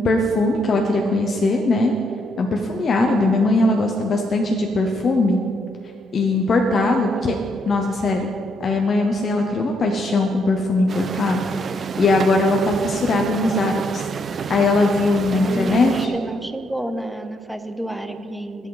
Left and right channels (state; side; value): normal; both; correlation 0.75